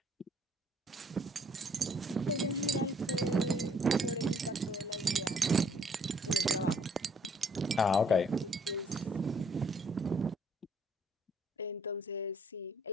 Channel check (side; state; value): both; normal; correlation 0.64